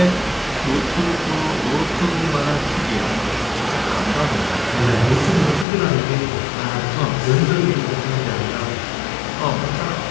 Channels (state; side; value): drops out; right; at 5.7 s